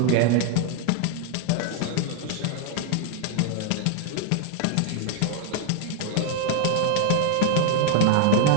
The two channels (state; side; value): different; both; correlation 0.00